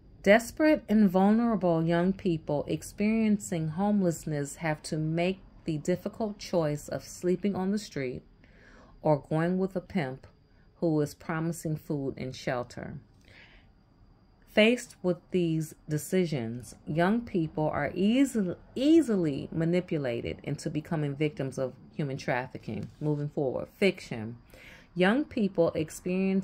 Desperate and vulnerable young people experiencing homelessness have to make the difficult choice of sleeping on the street or going with a pimp who is promising food and shelter. Faced with these decisions, young people are easily manipulated into becoming victims of human trafficking. Moving forward, fiction. Young people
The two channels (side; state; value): both; identical; correlation 1.00